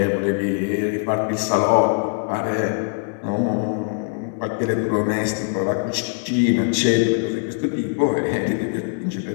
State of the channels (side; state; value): right; silent; 64 dB below the other